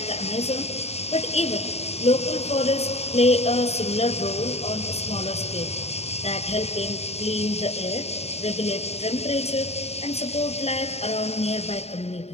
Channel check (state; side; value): late; right; 0.30 ms